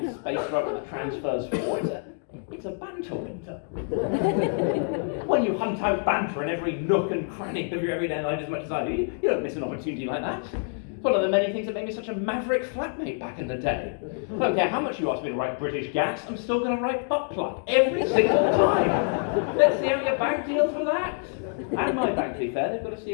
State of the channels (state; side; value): silent; right; 57 dB below the other